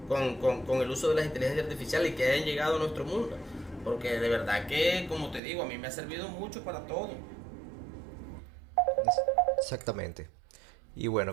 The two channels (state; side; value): drops out; left; at 5.4 s